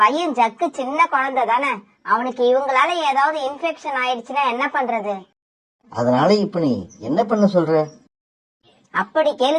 ஜக்கு சின்ன குழந்தை தானே, அவனுக்கு இவங்களால ஏதாவது இன்ஃபெக்ஷன் ஆயிடுச்சுன்னா என்ன பண்றது? அதனால இப்ப நீ என்ன பண்ண சொல்ற? அப்படி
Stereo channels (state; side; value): identical; both; correlation 1.00